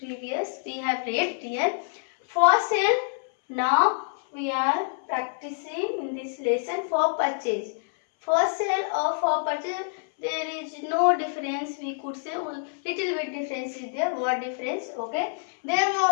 We have read here. For sale. Now we are practicing in this lesson for purchase. For sale or for purchase, there is no difference. We could say little bit difference is there. What difference? Okay.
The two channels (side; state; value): right; silent; 60 dB below the other